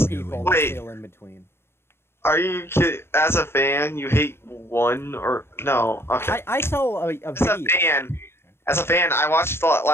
of people that Wait. feel in between. Are you kidding? As a fan, you hate one or no? Okay. I saw a video. As a fan, I watched the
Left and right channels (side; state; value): right; late; 0.12 ms